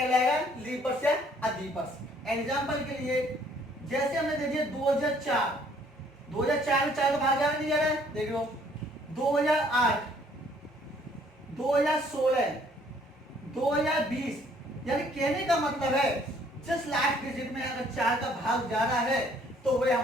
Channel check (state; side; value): normal; both; correlation 0.61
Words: लीप वर्ष या अधिवर्ष। एग्जाम्पल के लिए जैसे हमने दे दिया 2004, 2004 में 4 का भाग जा रहा नहीं जा रहा है? देख लो 2008, 2016, 2020, यानी कहने का मतलब है जिस लास्ट डिजिट में अगर 4 का भाग जा रहा है तो वह